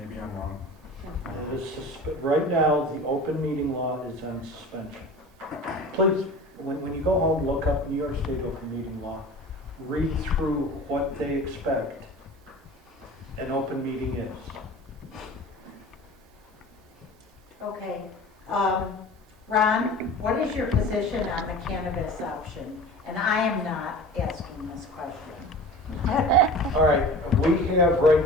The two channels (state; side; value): normal; both; correlation 0.38